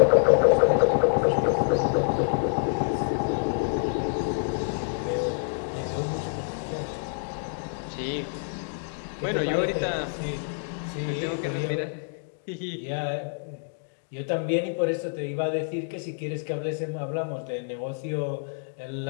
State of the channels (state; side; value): silent; right; digital silence